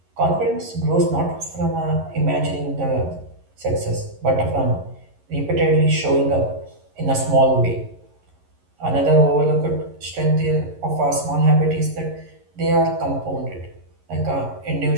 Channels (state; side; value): late; left; 11 ms